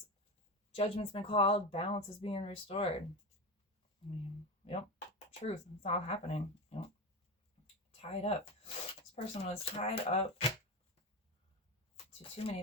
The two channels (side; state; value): both; normal; correlation 0.20